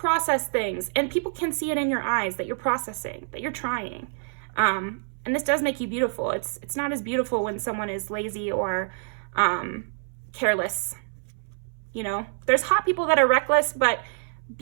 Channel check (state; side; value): silent; left; 61 dB below the other